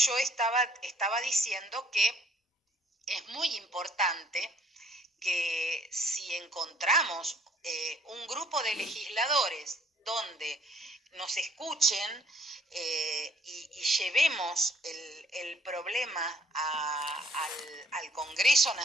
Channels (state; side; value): normal; both; correlation 0.62